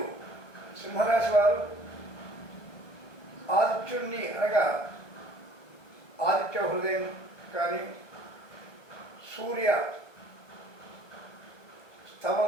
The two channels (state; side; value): late; right; 1.2 ms